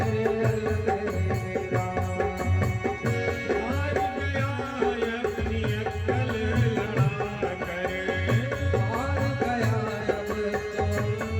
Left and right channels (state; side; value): identical; both; correlation 1.00